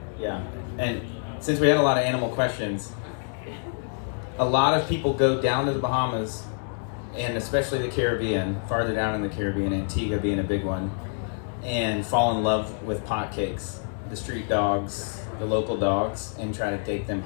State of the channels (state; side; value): silent; right; 60 dB below the other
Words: Yeah, and since we had a lot of animal questions, a lot of people go down to the Bahamas, and especially the Caribbean, farther down in the Caribbean, Antigua being a big one, and fall in love with potcakes, the street dogs, the local dogs, and try to take them